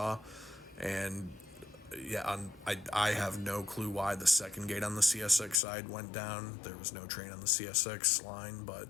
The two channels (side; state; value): right; drops out; at 5.6 s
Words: And, I have no clue why the second gate on the CSX side went down. There was no train on the CSX line, but,